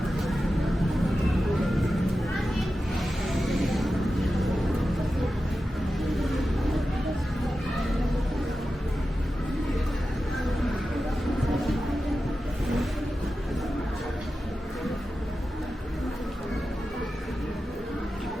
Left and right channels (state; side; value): normal; both; correlation 0.92